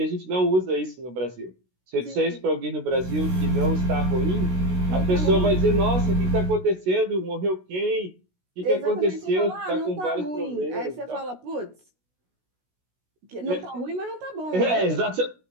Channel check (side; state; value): left; late; 16 ms